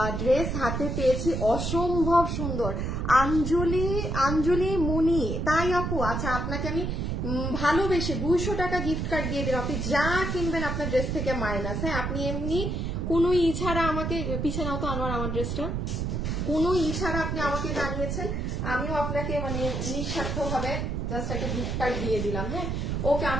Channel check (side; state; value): right; noise; rumble, 1 dB below the sound